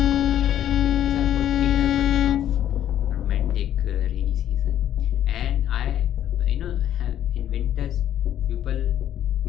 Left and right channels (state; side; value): quieter; right; 11.2 dB